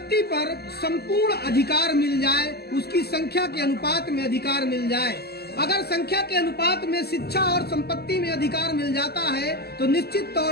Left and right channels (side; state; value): right; late; 0.46 ms